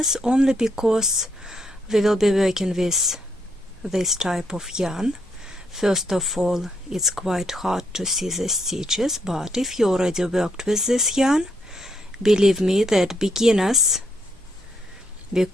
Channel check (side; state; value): both; normal; correlation 0.76